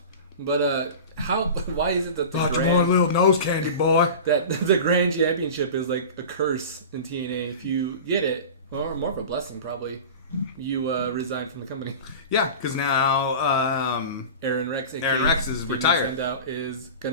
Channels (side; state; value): both; inverted; correlation -0.33